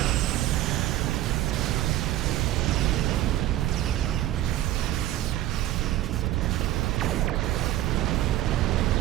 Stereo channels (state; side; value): quieter; left; 14.4 dB